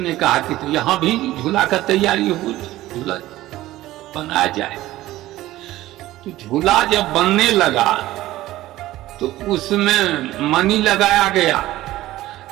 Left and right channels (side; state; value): left; quieter; 16.0 dB